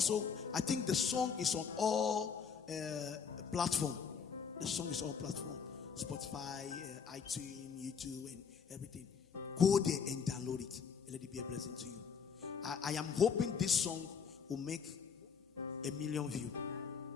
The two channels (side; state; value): right; quieter; 6.4 dB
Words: I think the song is on all platforms. The song is on platform, Spotify, iTunes, YouTube, and everything. Go there and download it, and let it be a blessing to you. I am hoping this song will make 1 million views.